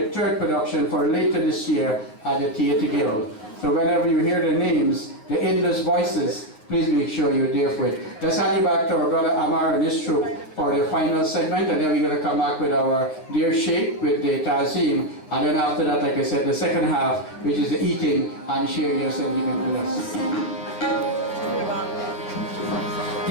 3rd production for later this year at the Theatre Guild. So whenever you hear the names, the Indus Voices, please make sure you're there for it. Let's hand you back to our brother Amar and his troupe for the final segment, and then we're going to come back with our dear Sheikh with the Tazim, and then after that, like I said, the second half, which is the eating and sharing your sentiment with us.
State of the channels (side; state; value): right; late; 9.3 ms